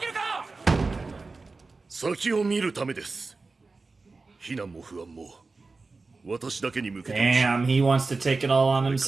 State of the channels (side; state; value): left; quieter; 3.8 dB